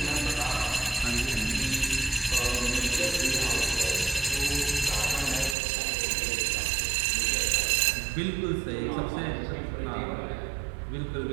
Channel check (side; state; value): left; drops out; at 5.6 s